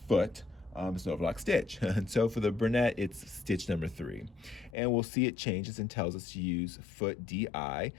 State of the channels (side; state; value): right; drops out; at 4.8 s